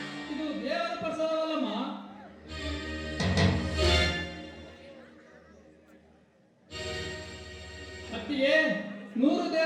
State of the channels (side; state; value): both; identical; correlation 1.00